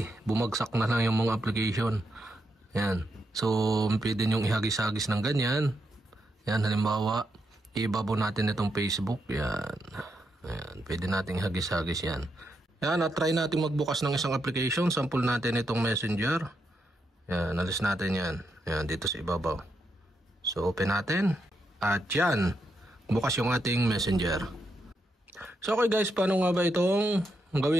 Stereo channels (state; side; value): normal; both; correlation 0.82